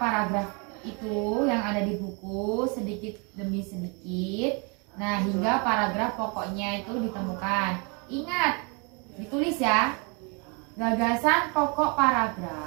itu yang ada di buku sedikit demi sedikit. Nah, hingga paragraf pokoknya itu ditemukan. Ingat, ditulis ya. Gagasan pokok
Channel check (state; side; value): quieter; left; 32.8 dB